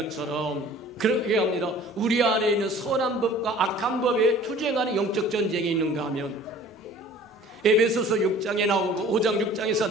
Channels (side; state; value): both; normal; correlation 0.48